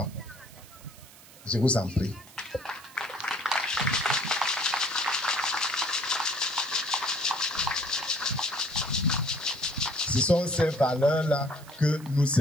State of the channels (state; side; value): noise; right; hiss, 21 dB below the sound